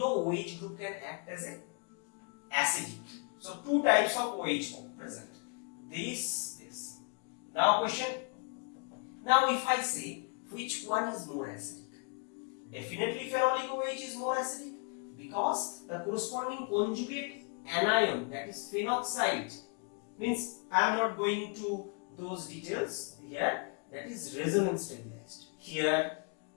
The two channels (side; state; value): right; quieter; 37.5 dB